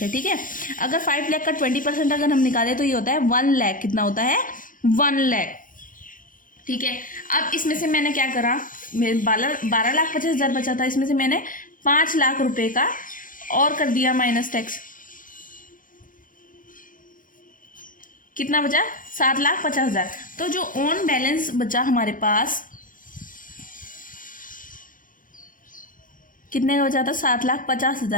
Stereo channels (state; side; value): late; right; 0.39 ms